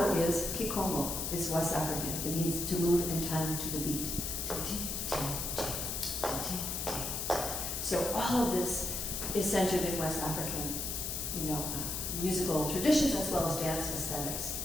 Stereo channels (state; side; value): noise; left; hiss, 2 dB below the sound